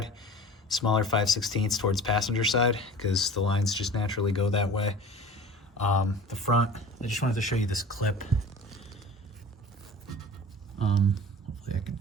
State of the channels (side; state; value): both; normal; correlation 0.40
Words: smaller 5/16 towards passenger side, because the lines just naturally go that way. The front, I just wanted to show you this clip. Hopefully I can